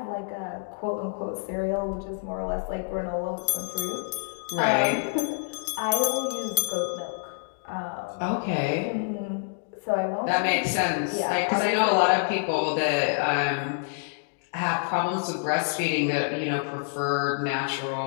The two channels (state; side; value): silent; right; digital silence